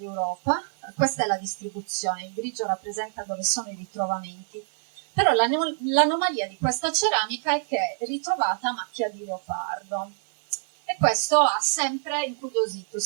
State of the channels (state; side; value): silent; left; digital silence